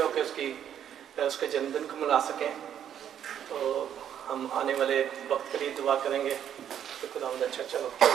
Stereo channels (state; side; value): quieter; left; 9.6 dB